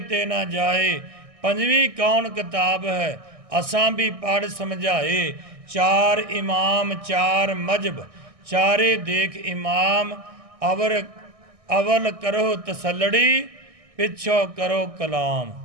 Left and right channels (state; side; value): late; left; 1.6 ms